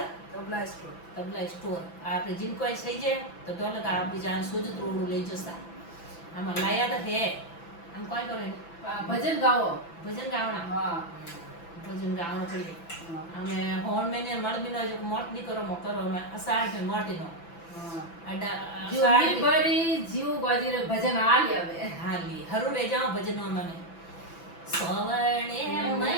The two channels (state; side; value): late; right; 5.9 ms